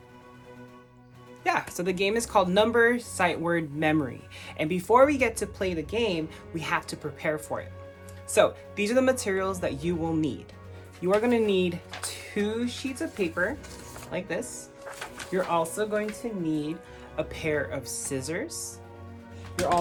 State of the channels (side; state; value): both; identical; correlation 1.00